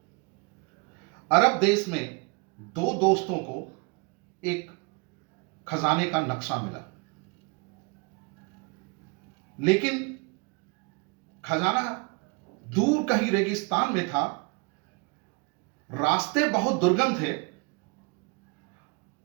अरब देश में दो दोस्तों को एक खजाने का नक्शा मिला, लेकिन खजाना दूर कहीं रेगिस्तान में था। रास्ते बहुत दुर्गम थे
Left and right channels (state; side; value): quieter; left; 29.8 dB